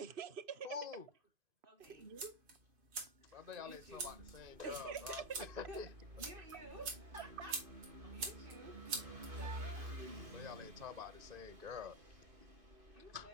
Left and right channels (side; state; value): left; late; 2.5 ms